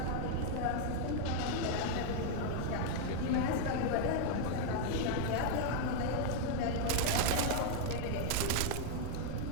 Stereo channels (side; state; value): both; different; correlation 0.00